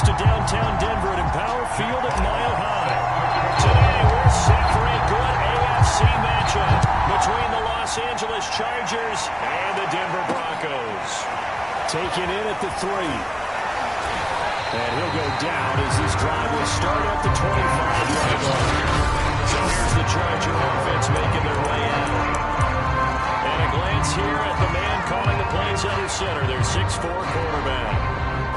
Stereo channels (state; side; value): identical; both; correlation 1.00